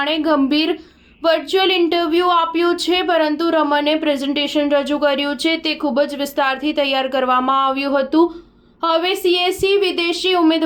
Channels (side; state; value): both; identical; correlation 1.00